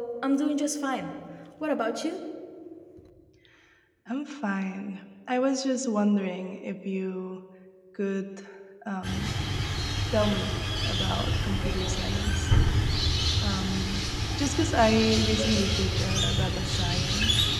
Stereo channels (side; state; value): both; identical; correlation 1.00